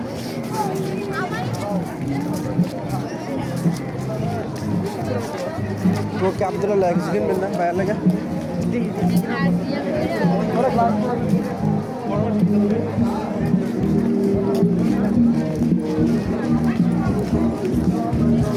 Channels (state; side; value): identical; both; correlation 1.00